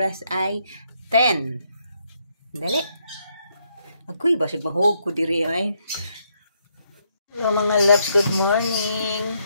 ay 10. Dali. Agoy basig mahog ko diri ay. Hello mga loves, good morning.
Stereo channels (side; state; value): both; inverted; correlation -0.75